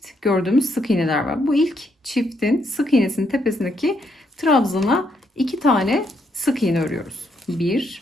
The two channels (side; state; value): both; normal; correlation 0.75